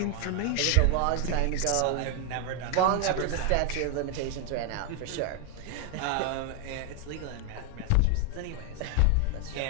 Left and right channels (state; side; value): different; both; correlation 0.01